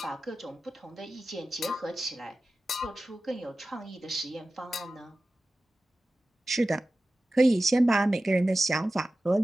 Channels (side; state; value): both; normal; correlation 0.95